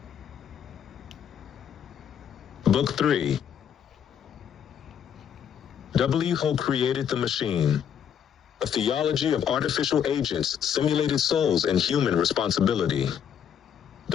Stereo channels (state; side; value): quieter; right; 8.6 dB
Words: Book 3. Who created the machine? A theology of artificial agents, simulated souls, and human responsibility.